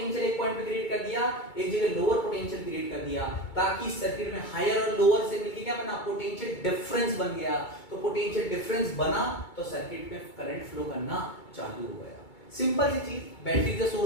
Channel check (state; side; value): late; right; 2.2 ms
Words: एक पॉइंट पे क्रिएट कर दिया, एक जगह लोअर पोटेंशियल क्रिएट कर दिया, ताकि सर्किट में हायर और लोअर से मिलके क्या बना, पोटेंशियल डिफरेंस बन गया। तो पोटेंशियल डिफरेंस बना तो सर्किट में करंट फ्लो करना चालू हो गया। सिंपल सी चीज, battery is the